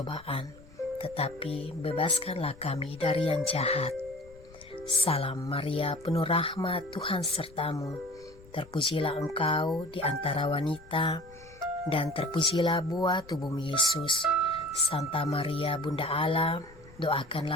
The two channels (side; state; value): left; noise; rumble, 22 dB below the sound